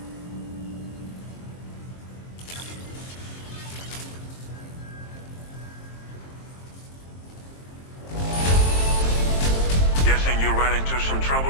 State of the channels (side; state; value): right; late; 23 ms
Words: Guessing you ran into some trouble